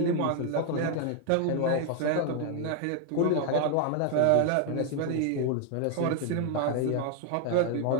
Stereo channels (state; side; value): different; both; correlation 0.00